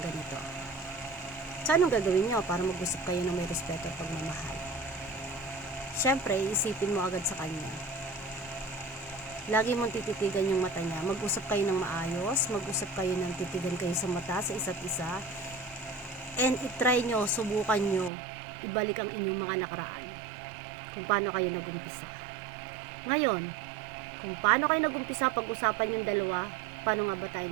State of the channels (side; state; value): left; drops out; at 18.1 s